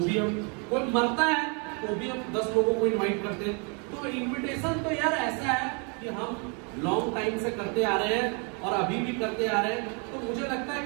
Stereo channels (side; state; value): left; quieter; 36.2 dB